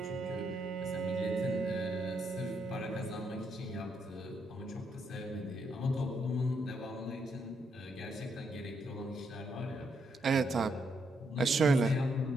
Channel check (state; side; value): normal; both; correlation 0.77